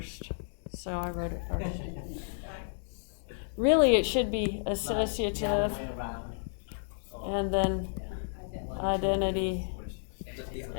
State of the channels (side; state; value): right; silent; digital silence